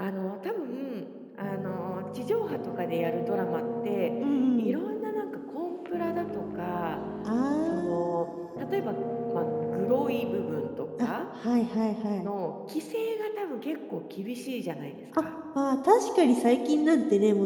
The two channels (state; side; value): identical; both; correlation 1.00